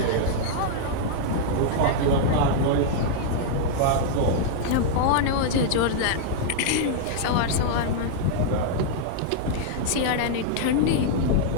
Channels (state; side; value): different; both; correlation -0.01